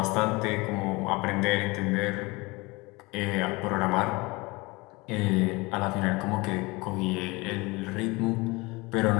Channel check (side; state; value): right; quieter; 24.2 dB